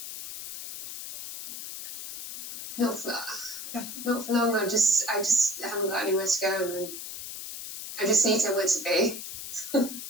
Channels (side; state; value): left; noise; hiss, 9 dB below the sound